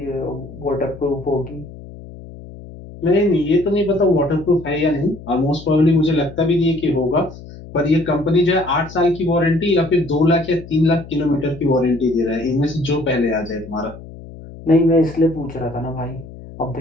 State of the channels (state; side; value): noise; left; hum, 16 dB below the sound